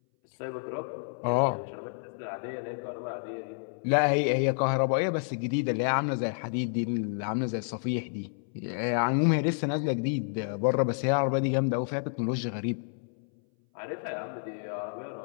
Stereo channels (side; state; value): right; silent; 58 dB below the other